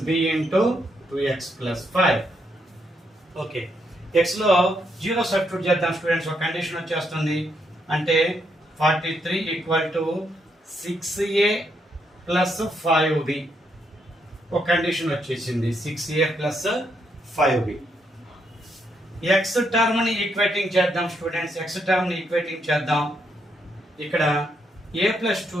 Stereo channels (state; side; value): normal; both; correlation 0.77